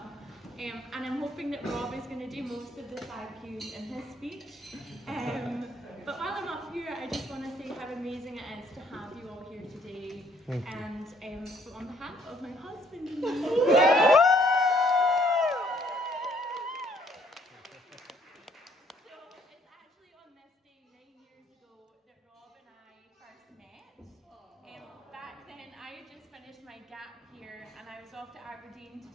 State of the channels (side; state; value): both; normal; correlation 0.64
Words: and I'm hoping that Rob is going to do most of the thank yous in his speech. But while I'm up here, I just want to say how amazing it is to have you all here today. And on behalf of my husband and me, my gap here and I was off to Aberdeen to